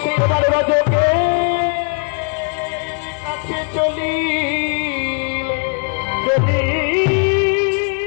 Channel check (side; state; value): right; quieter; 38.8 dB